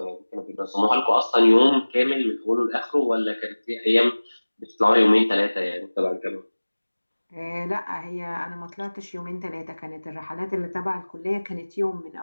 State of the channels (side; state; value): both; inverted; correlation -1.00